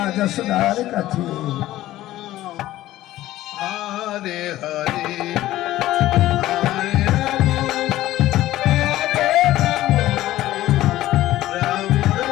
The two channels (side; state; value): right; quieter; 15.1 dB